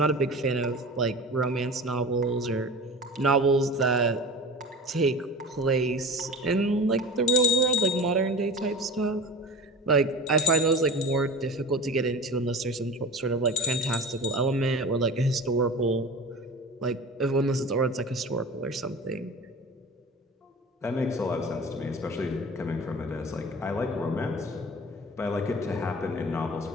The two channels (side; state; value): both; normal; correlation 0.34